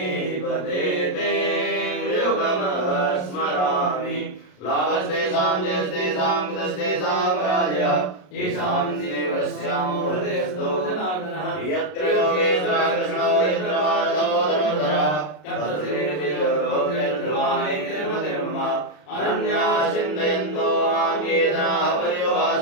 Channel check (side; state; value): right; late; 33 ms